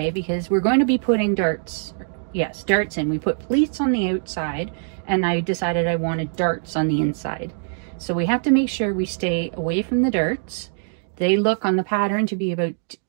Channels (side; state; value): left; silent; digital silence